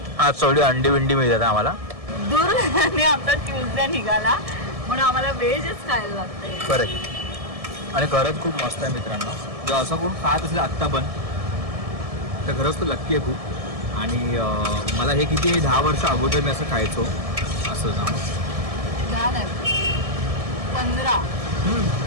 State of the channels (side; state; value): left; late; 1.7 ms